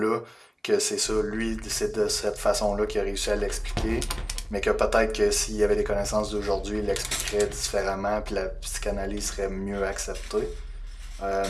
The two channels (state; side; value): identical; both; correlation 1.00